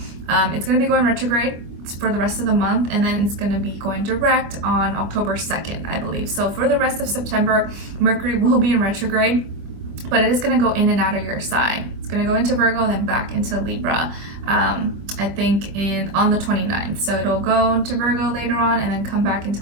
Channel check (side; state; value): left; late; 25 ms